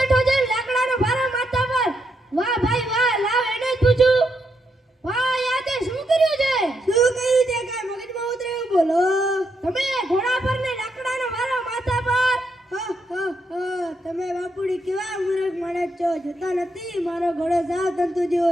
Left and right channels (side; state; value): both; normal; correlation 0.80